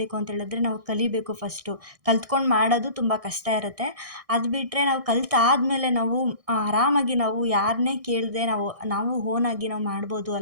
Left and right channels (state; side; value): late; left; 1.6 ms